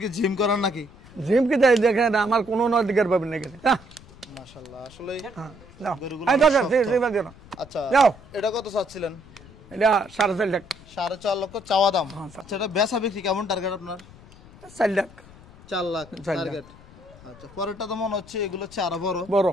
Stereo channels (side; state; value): left; noise; rumble, 22 dB below the sound